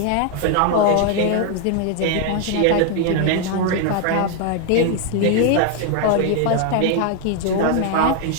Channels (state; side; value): different; both; correlation 0.00